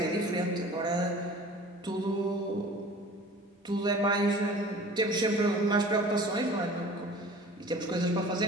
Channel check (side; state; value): both; normal; correlation 0.44